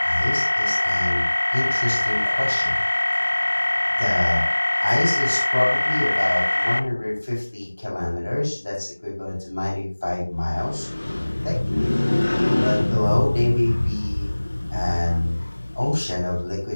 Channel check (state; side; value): inverted; both; correlation -1.00